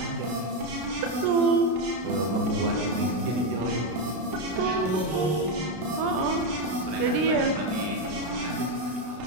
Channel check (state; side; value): late; left; 32 ms